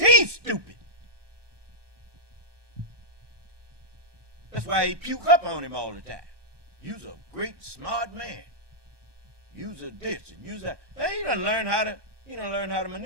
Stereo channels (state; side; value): late; left; 1.2 ms